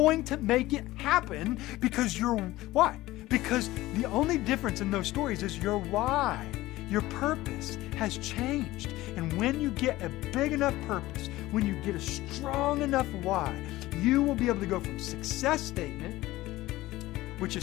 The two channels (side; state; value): right; quieter; 17.4 dB